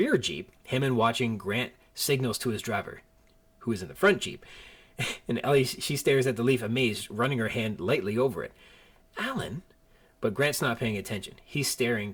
jeep, Hammond, watching, Grant signals to his driver, who is in the front jeep. And Ellie, she stares at the leaf, amazed, running her hand lightly over it. "Alan?" But Grant's not paying attention. He's staring,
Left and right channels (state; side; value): identical; both; correlation 1.00